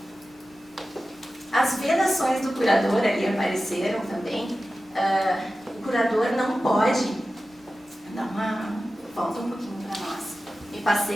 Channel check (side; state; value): both; normal; correlation 0.94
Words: As vedações do curador ali apareceram também. O curador não pode... Volta um pouquinho para nós. Me